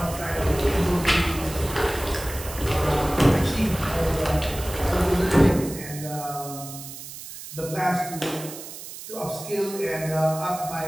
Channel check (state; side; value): noise; right; hiss, 12 dB below the sound